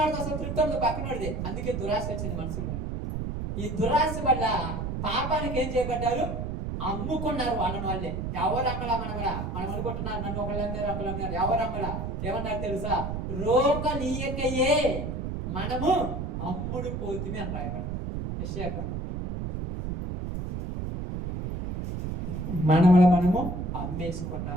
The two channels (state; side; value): noise; right; rumble, 4 dB below the sound